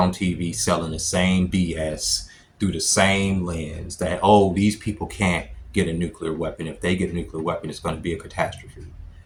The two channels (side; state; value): both; identical; correlation 1.00